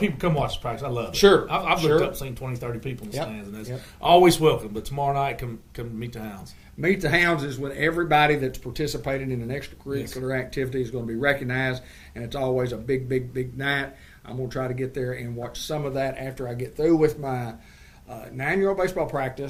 come watch us practice. I love it. Sure. I've looked up, seen 20, 30 people in the Yep. stands, and that's Yep. always welcome. But tomorrow night, come meet the Hounds. Meet the Hounds is when everybody that's participated in an extracurricular activity is going to be recognized, and it's always a big, big, big night. I'm going to try to get there and watch some of that after I get through with my 9-year-old baseball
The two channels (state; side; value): identical; both; correlation 1.00